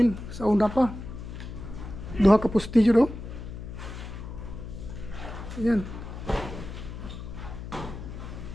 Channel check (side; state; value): left; noise; hum, 10 dB below the sound